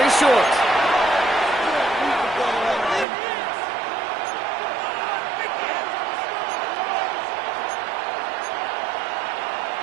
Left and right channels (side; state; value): left; drops out; at 3.1 s